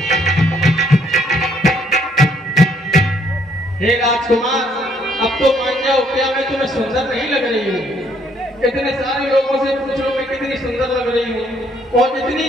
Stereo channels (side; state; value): both; normal; correlation 0.67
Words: हे राजकुमार, अब तो मान जाओ, क्या मैं तुम्हें सुंदर नहीं लग रही हूँ? इतने सारे लोगों से पूछ लो मैं कितनी सुंदर लग रही हूँ, और इतनी